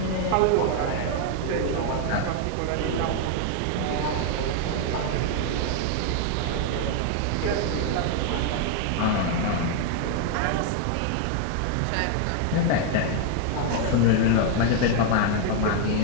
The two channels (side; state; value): both; different; correlation 0.00